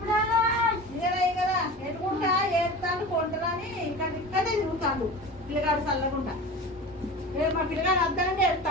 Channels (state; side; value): normal; both; correlation 0.34